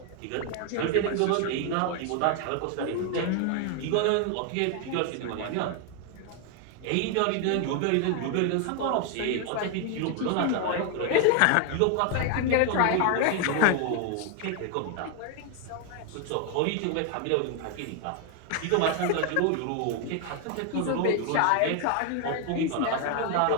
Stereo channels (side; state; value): both; different; correlation 0.00